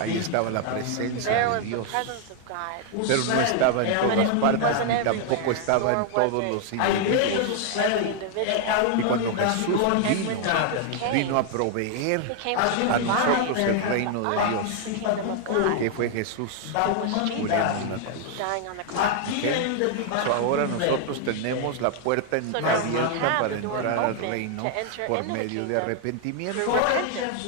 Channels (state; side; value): different; both; correlation 0.00